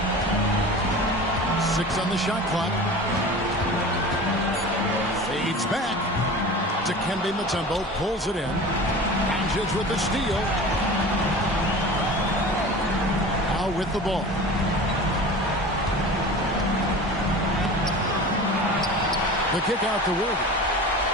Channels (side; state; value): both; normal; correlation 0.36